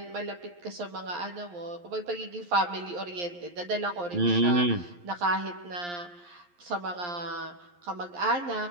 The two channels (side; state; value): left; late; 11 ms